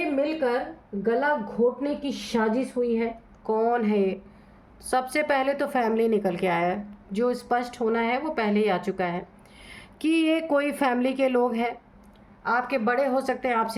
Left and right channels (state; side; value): identical; both; correlation 1.00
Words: मिलकर गला घोटने की साजिश हुई है, कौन है ये? सबसे पहले तो फैमिली निकल के आया है। जो स्पष्ट होना है वो पहले ही आ चुका है कि ये कोई फैमिली के लोग हैं। आपके बड़े हो सकते हैं,